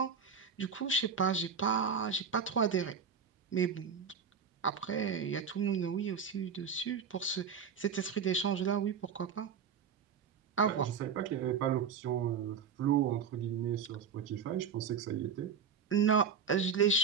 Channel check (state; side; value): quieter; left; 6.5 dB